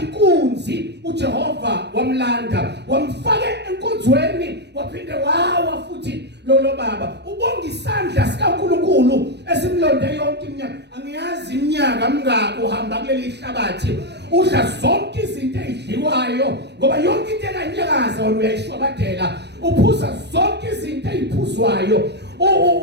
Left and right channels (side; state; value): left; late; 0.50 ms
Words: inkunzi uJehova wamlanda wamfaka enkonzweni waphinde wawa futhi lo baba ubonga isandla sikaNkulunkulu esimlonde yonke iminyaka angiyazi iminyaka mingako uhamba kuleli hlabathi udla zonke izinto ezidliwayo ngoba yonke into ekanyakaza wena uyayishwabadela uphuza zonke izinto eziphuzwayo